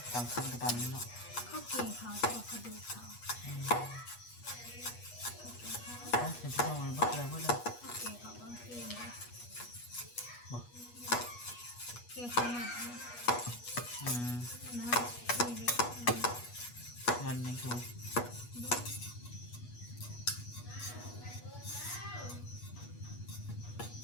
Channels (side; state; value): right; late; 8.3 ms